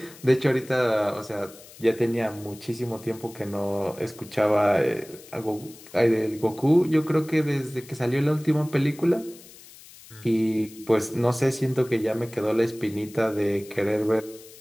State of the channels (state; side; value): noise; left; hiss, 20 dB below the sound